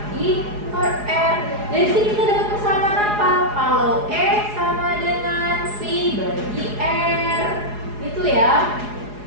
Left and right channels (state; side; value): late; left; 4.8 ms